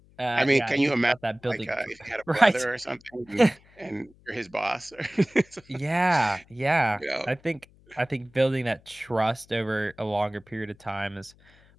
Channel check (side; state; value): left; noise; hum, 28 dB below the sound